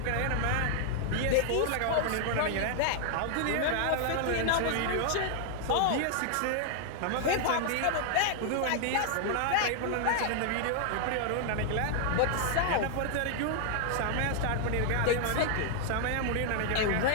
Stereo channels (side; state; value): both; different; correlation 0.00